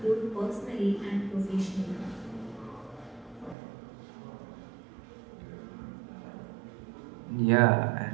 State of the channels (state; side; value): drops out; left; at 3.6 s